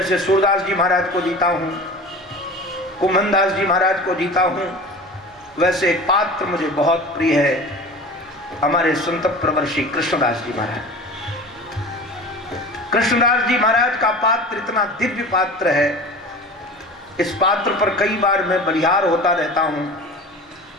सूरदास जी महाराज को जीता हूं, कुम्भनदास जी महाराज को जीता हूं, वैसे एक पात्र मुझे बहुत प्रिय है, हमारे संत प्रवर्षी कृष्णदास जी महाराज। कृष्णदास जी महाराज का पात्र इतना दिव्य पात्र है, इस पात्र पर कई बार मैं बलिहार होता रहता हूं।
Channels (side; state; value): both; normal; correlation 0.36